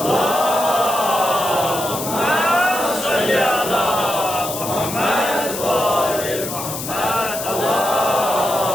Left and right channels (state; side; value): noise; left; hiss, 7 dB below the sound